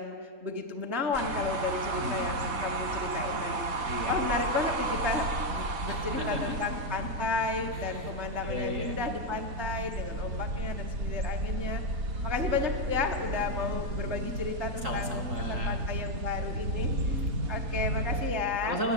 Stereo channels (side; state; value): left; late; 3.7 ms